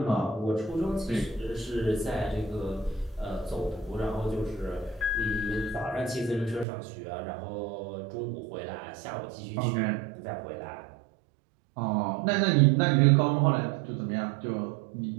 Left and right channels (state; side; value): drops out; left; at 6.7 s